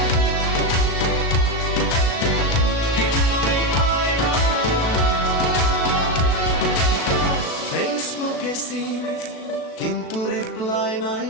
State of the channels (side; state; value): right; late; 37 ms